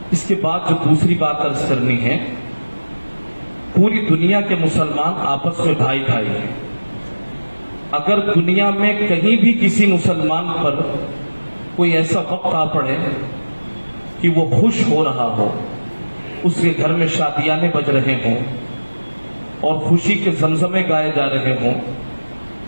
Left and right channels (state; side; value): inverted; both; correlation -1.00